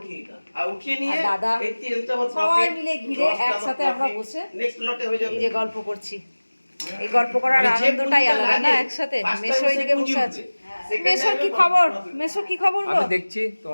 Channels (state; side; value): inverted; both; correlation -1.00